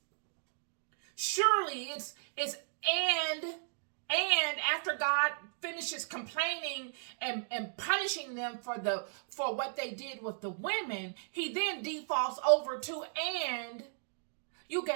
Surely it's and after God finishes complaining and punishing them for what they did with the women, he then defaults over to, and you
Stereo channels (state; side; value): silent; left; digital silence